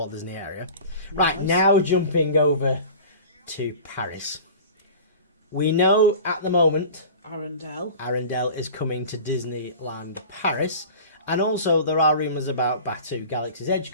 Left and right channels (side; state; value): both; inverted; correlation -0.38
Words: Disney area. Right, Nice. now jumping over to Paris. We know at the moment Arendelle is coming to Disneyland Paris. And also there are rumours about Batuu Galaxy's Edge